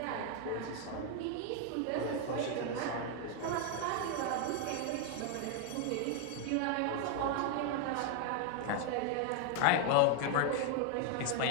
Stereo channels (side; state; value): both; different; correlation 0.00